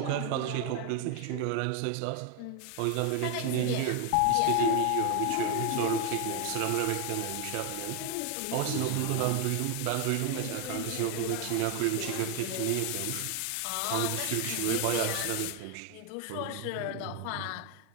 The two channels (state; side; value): different; both; correlation 0.01